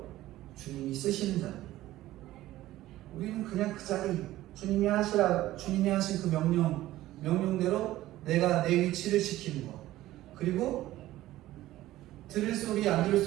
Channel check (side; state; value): left; quieter; 15.5 dB